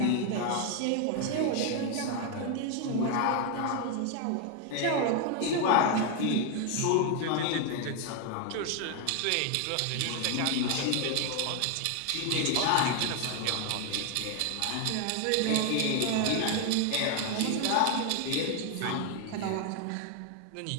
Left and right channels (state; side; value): different; both; correlation 0.01